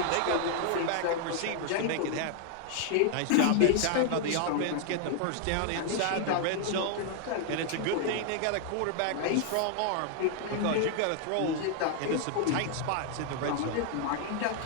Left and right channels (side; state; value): both; different; correlation 0.00